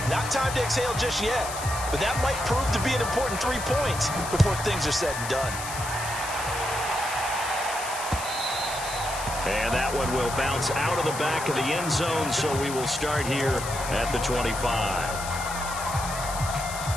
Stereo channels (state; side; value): noise; left; hiss, 9 dB below the sound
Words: Not time to exhale just yet, but that might prove to be an important 3 points before things are said and done. And that one will bounce out of the back of the end zone, so we will start here at the 25.